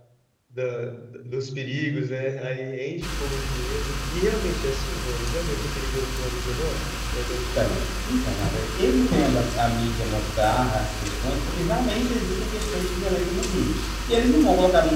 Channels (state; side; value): identical; both; correlation 1.00